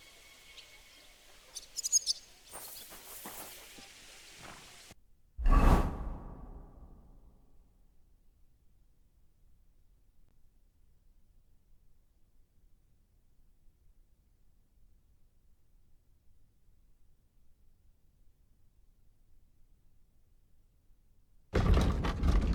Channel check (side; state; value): both; identical; correlation 1.00